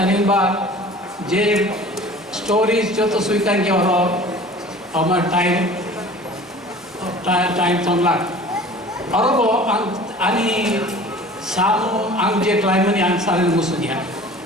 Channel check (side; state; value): both; normal; correlation 0.44